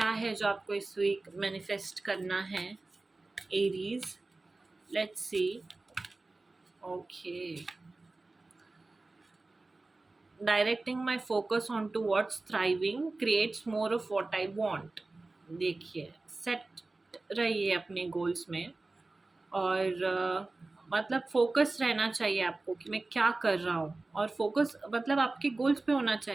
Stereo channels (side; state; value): left; quieter; 3.3 dB